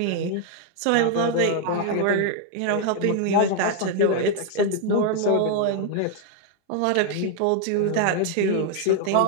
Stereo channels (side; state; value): both; different; correlation 0.00